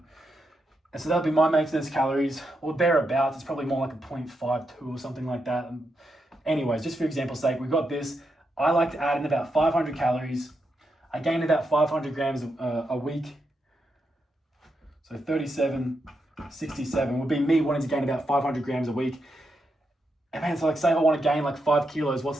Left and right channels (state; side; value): normal; both; correlation 0.84